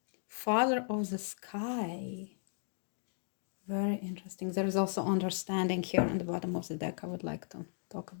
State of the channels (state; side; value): silent; right; digital silence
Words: Father of the sky. Very interesting. There is also understanding here on the bottom of the deck. I would like to talk